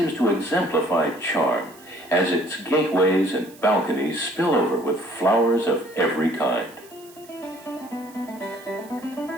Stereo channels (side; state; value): right; noise; hiss, 23 dB below the sound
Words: to exemplify charm as its gateways and balconies spill over with flowers of every kind.